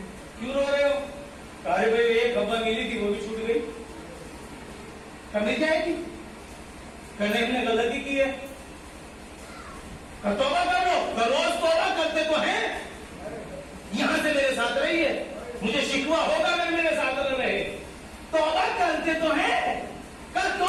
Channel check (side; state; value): both; identical; correlation 1.00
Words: کیوں رو رہے ہو؟ ارے بھائی ایک ہوا ملی تھی وہ بھی چھوٹ گئی، کمی جائے گی؟ کرنے نے غلطی کی ہے، توبہ کرو، روز توبہ کرتے تو ہیں، یہاں سے میرے ساتھ رہیے، مجھے شکوہ ہوگا اگر میرے ساتھ نہ رہے، توبہ کرتے تو ہیں، کیوں